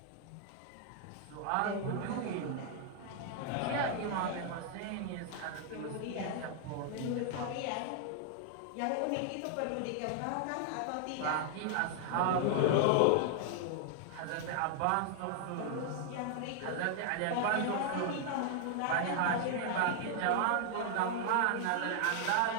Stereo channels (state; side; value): different; both; correlation 0.00